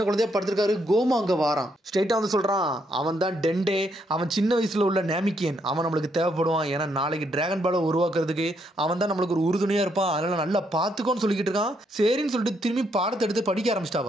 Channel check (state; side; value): normal; both; correlation 0.75